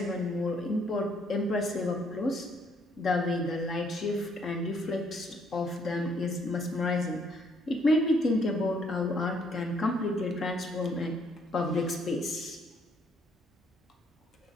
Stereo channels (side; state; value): both; normal; correlation 0.67